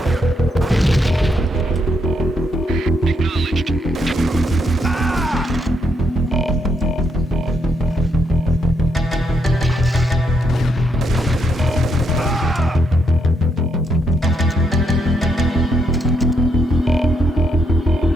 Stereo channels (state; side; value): normal; both; correlation 0.76